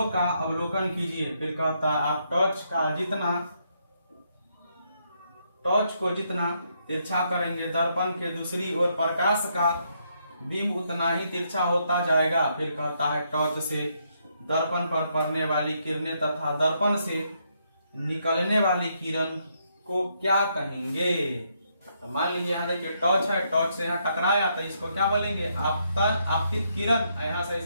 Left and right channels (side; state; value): both; inverted; correlation -0.76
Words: का अवलोकन कीजिए। फिर कहता है आप टॉर्च को जितना तिरछा करेंगे दर्पण के दूसरी ओर प्रकाश का बिंब उतना ही तिरछा होता जाएगा। फिर कहता है टॉर्च से दर्पण पर पड़ने वाली किरणें तथा दर्पण से निकलने वाली किरण को क्या कहेंगे। तो मान लीजिए यहाँ देखिए टॉर्च है, टॉर्च से यहाँ टकराया तो इसको क्या बोलेंगे आपतित किरण। यहाँ से